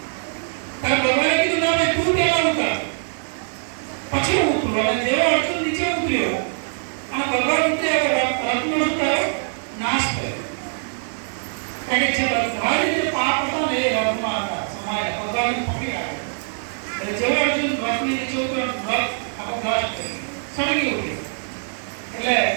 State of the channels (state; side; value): silent; left; 64 dB below the other